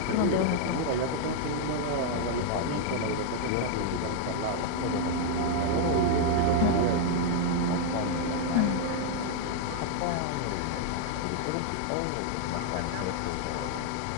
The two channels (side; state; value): both; different; correlation 0.00